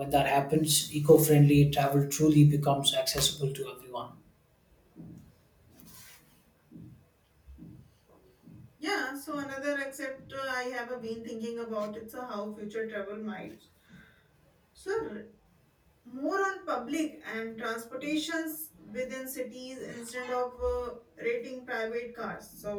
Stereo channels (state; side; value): identical; both; correlation 1.00